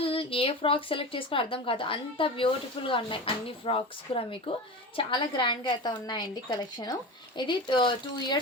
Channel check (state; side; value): normal; both; correlation 0.28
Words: ఏ ఫ్రాక్ సెలెక్ట్ చేసుకుని అర్థం కాదు, అంత బ్యూటిఫుల్గా ఉన్నాయి అన్ని ఫ్రాక్స్ కూడా మీకు. చాలా గ్రాండ్గా అయితే ఉన్నాయండి కలెక్షన్. ఇది 2